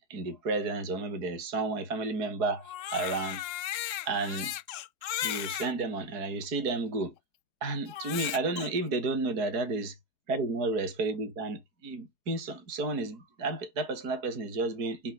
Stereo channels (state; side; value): late; left; 3.7 ms